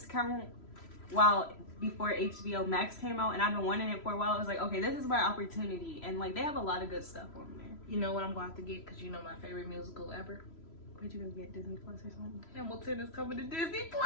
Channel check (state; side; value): late; right; 3.0 ms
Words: before HBO Max came out, and I've been wanting it for a while. I was like, okay, this is my opportunity, and like they have a lot of good stuff on there. You know what I'm going to have to get because you know my favorite musical ever. Would you go get Disney Plus or something? Hamilton is coming to Disney